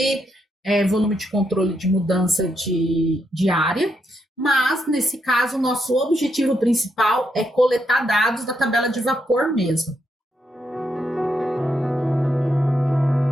volume de controle de mudança de área, mas, nesse caso, o nosso objetivo principal é coletar dados da tabela de vapor mesmo.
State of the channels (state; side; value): normal; both; correlation 0.80